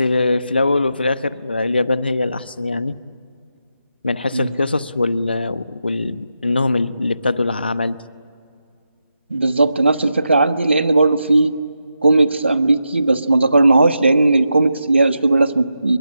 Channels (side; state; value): both; inverted; correlation -0.86